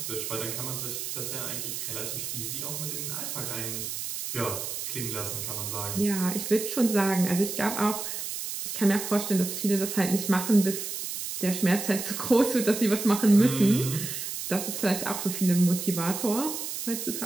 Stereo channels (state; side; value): noise; right; hiss, 5 dB below the sound